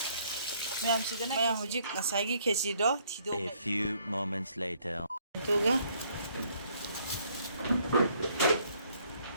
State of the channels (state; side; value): inverted; both; correlation -0.66